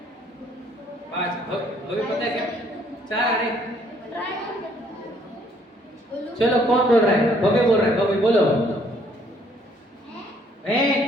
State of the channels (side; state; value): both; normal; correlation 0.64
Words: अभी पता है क्या? 4 आ रहे। चलो कौन बोल रहा है? भव्य बोल रहा है, भव्य बोलो।